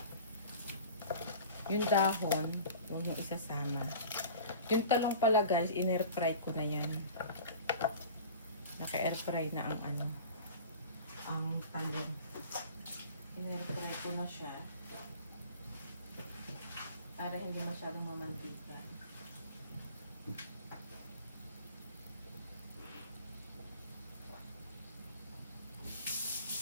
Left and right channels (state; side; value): inverted; both; correlation -0.40